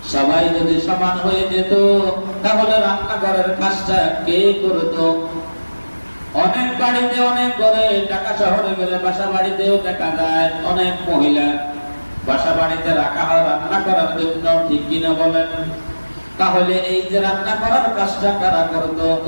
সবাই যদি সমান হয়ে যেত তাহলে রান্নাঘরের কাজটা কে করতো? অনেক বাড়িতে, অনেক ঘরে, ঢাকা শহরে গেলে বাসা বাড়িতেও দেখা যায় অনেক মহিলা বাসা বাড়িতে রাখা হয় রান্না করার জন্য, ঠিক কিনা বলেন? তাহলে এই যে রান্না করার কাজটা কারা করতো,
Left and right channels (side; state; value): both; inverted; correlation -1.00